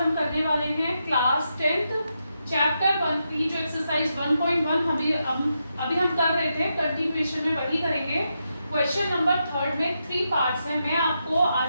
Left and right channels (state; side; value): inverted; both; correlation -0.84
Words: करने वाले हैं क्लास 10th चैप्टर 1 की जो एक्सरसाइज 1.1 अभी हम कर रहे थे, कंटिन्यूएशन में वही करेंगे। क्वेश्चन नंबर 3 में 3 पार्ट्स हैं। मैं आपको